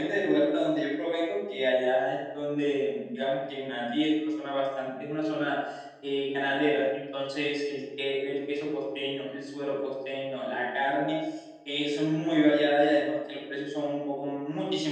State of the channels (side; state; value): both; identical; correlation 1.00